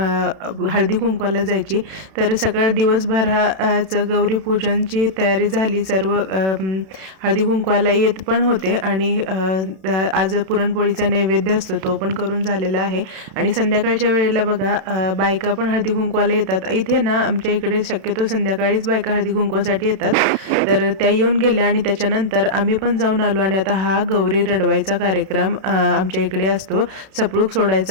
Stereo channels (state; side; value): late; left; 31 ms